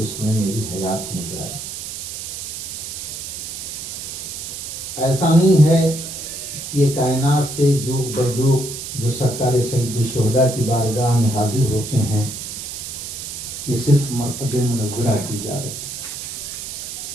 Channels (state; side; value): noise; right; hiss, 7 dB below the sound